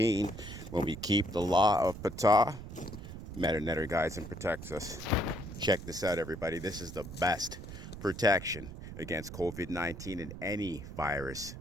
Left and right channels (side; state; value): right; noise; rumble, 11 dB below the sound